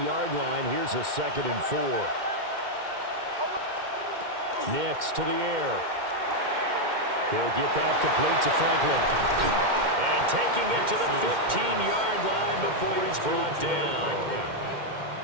line. Here's a 2nd and 4. Nix to the air. He'll get that complete to Franklin. And taking it to the 15-yard line before he's brought down.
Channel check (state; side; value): late; left; 2.1 ms